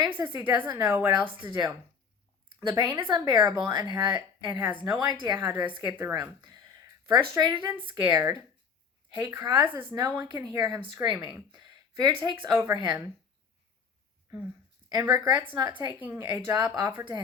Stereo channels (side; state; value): right; quieter; 6.1 dB